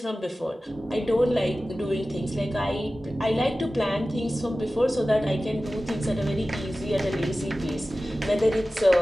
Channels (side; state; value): both; normal; correlation 0.96